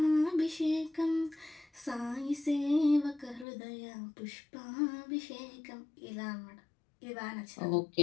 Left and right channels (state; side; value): drops out; right; at 3.5 s